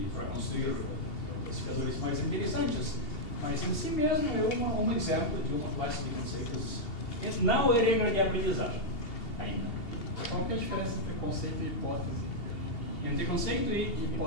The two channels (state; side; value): late; right; 2.8 ms